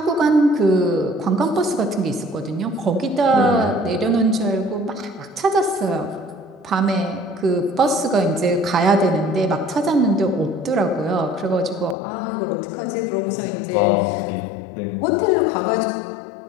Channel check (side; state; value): right; drops out; at 12.0 s